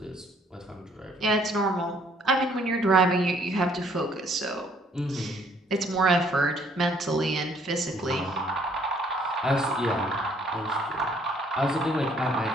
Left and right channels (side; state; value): both; normal; correlation 0.63